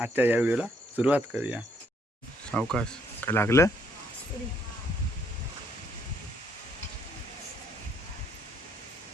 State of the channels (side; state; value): both; normal; correlation 0.69